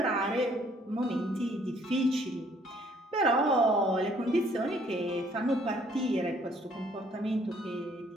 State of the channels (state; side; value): normal; both; correlation 0.62